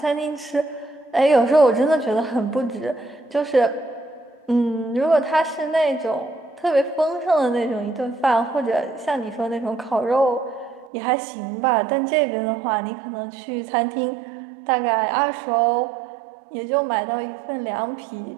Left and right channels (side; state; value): left; drops out; at 10.9 s